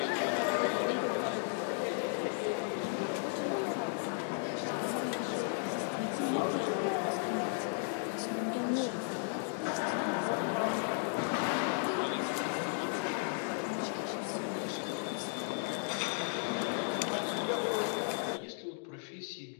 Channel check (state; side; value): silent; right; 54 dB below the other